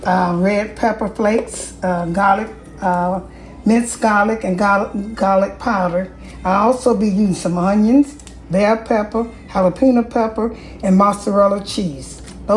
red pepper flakes, garlic, minced garlic, and garlic powder. I'll also be using some onions, bell pepper, jalapeno pepper, and mozzarella cheese.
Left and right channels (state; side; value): identical; both; correlation 1.00